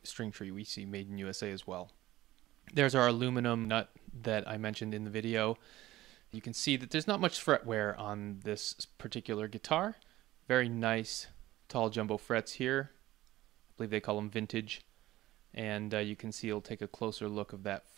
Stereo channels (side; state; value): left; quieter; 16.2 dB